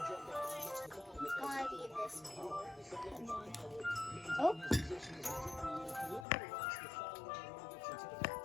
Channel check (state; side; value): drops out; right; at 6.2 s